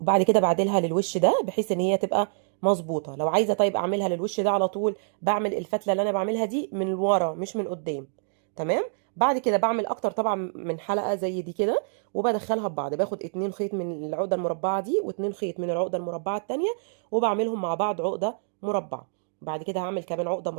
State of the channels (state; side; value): silent; left; digital silence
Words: كده بعدلها للوش ده بحيث ان هي تبقى مظبوطه. لو عايزه طيب اعملها للوش ده على طول، بعمل الفتله اللي انا بعملها دي من ورا مش من قدام. تمام. بعد كده بعمل اكتر طبعا من حلقه زي دي كده، وبدخلها ببعض. باخد 2 خيط من العقده المربعه دي و2 خيط من العقده المربعه التانية، وبعملهم مع بعض عقده مربعه. بعد كده هعمل كمان عقده